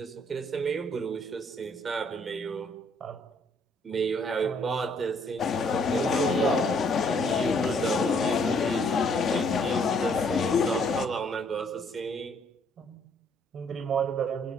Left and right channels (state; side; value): normal; both; correlation 0.65